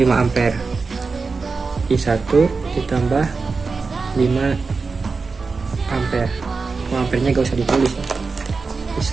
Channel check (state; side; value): quieter; left; 4.4 dB